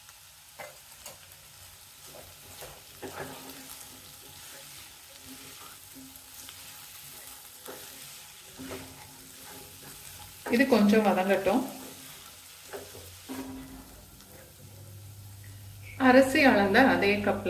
இது கொஞ்சம் வதங்கட்டும். அரிசி அளந்த அதே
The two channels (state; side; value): identical; both; correlation 1.00